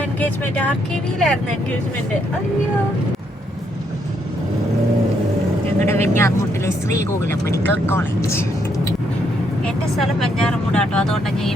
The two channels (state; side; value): normal; both; correlation 0.74